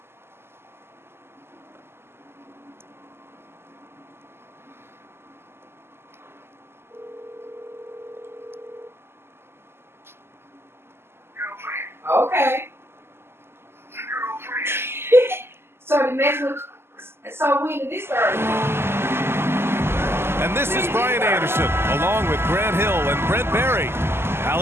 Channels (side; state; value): left; late; 0.12 ms